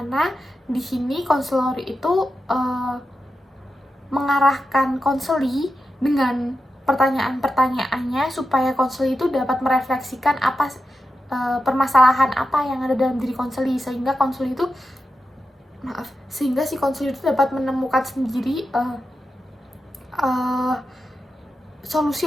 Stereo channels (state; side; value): normal; both; correlation 0.89